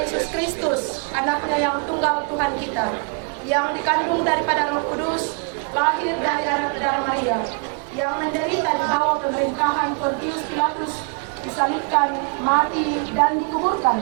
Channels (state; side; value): quieter; left; 38.3 dB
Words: Kristus, anaknya yang tunggal Tuhan kita, yang dikandung daripada Roh Kudus, lahir dari anak darah Maria, yang menderita di bawah pemerintahan Pontius Pilatus, disalibkan, mati, dan dikuburkan,